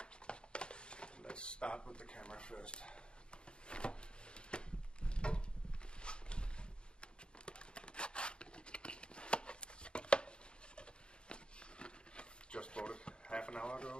Let's start with the camera first. Just bought it half an hour ago,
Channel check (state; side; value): late; right; 0.052 ms